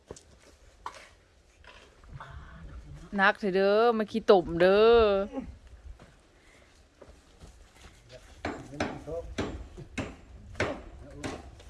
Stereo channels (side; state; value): both; identical; correlation 1.00